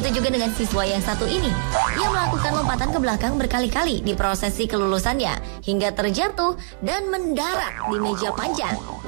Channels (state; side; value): silent; left; 64 dB below the other